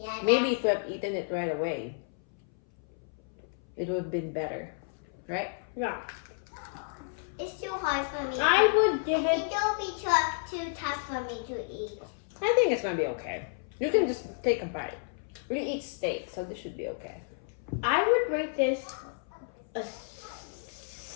Maybe if we have eaten it right away, it would have been better. Right? Yeah. It's too hard for me. I would I give think it. it will be too tough for me to eat. I think it's gonna be okay. You can just take a bite. We eat steak, so this should be okay. I would rate this a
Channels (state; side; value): silent; right; 57 dB below the other